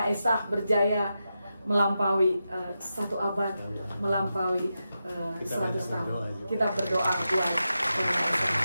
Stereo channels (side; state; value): both; inverted; correlation -0.89